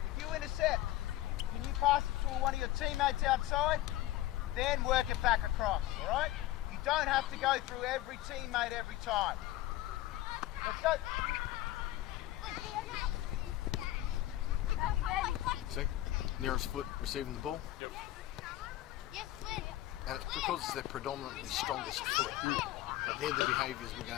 if you intercept, can you pass it to one of your teammates outside? Then work it back across, all right? You don't have to go through every teammate every time. Let's go. See, nearest foot receiving the ball, and it's because it's their predominantly strongest foot. But they're the behaviours we're going to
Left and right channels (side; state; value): right; quieter; 15.2 dB